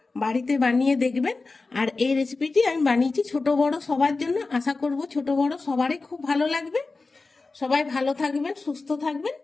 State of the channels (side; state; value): right; quieter; 3.8 dB